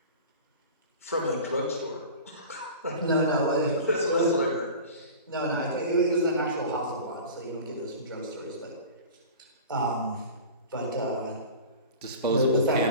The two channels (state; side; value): inverted; both; correlation -0.37